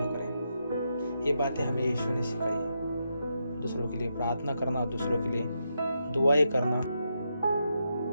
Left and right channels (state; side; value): inverted; both; correlation -0.83